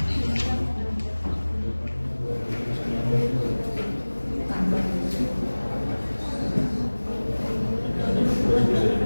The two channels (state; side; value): inverted; both; correlation -1.00